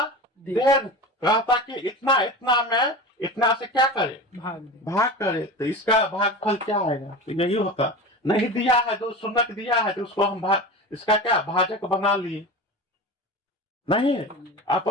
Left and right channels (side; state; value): both; normal; correlation 0.30